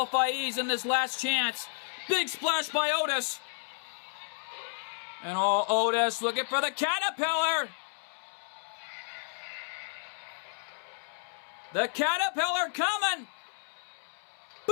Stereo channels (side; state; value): right; silent; 57 dB below the other